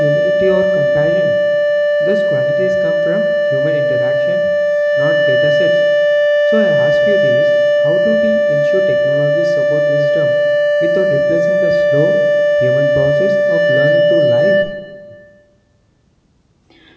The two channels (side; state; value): both; identical; correlation 1.00